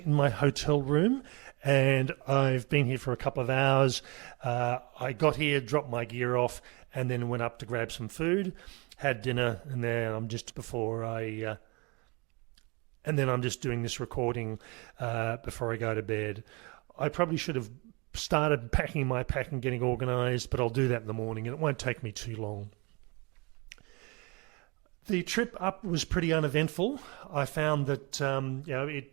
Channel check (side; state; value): left; quieter; 29.0 dB